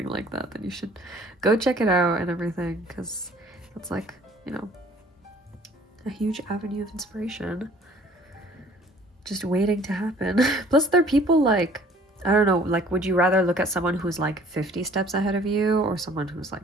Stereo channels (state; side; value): normal; both; correlation 0.54